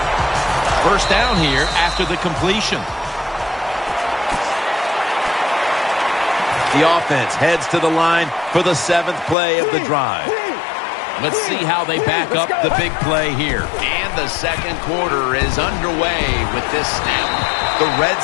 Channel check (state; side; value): drops out; right; at 9.3 s